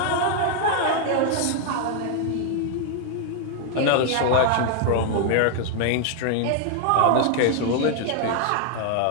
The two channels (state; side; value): different; both; correlation 0.00